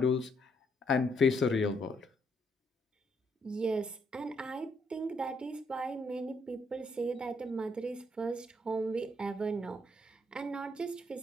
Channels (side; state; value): both; normal; correlation 0.73